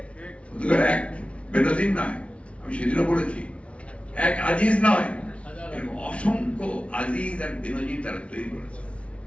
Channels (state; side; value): late; right; 0.062 ms